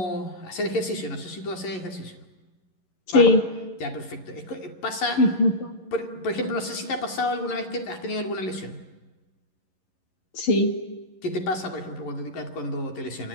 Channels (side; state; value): right; late; 11 ms